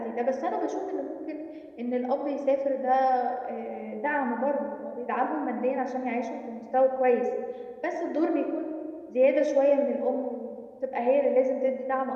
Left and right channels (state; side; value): identical; both; correlation 1.00